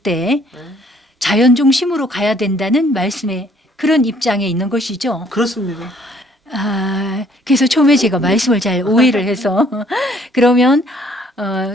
때 자연 중심으로 가야 된다는 말씀에 그런 입장에 있는 것이죠. 그렇습니다. 아, 그래서 처음에 제가 말씀을 잘 오해를 해서 그러면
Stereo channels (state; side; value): normal; both; correlation 0.62